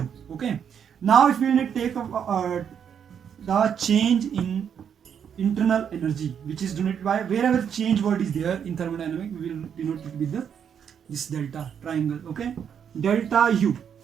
Okay. Now if we need to take the change in internal energy, which is denoted by, wherever change word is there in thermodynamics, we will denote it with this delta triangle. Okay, delta U.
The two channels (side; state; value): left; quieter; 8.0 dB